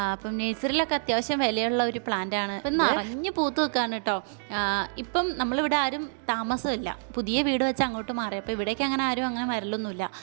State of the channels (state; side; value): silent; left; digital silence